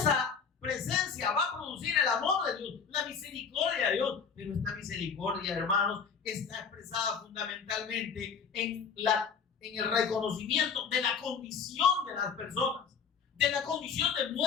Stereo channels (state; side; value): quieter; right; 6.2 dB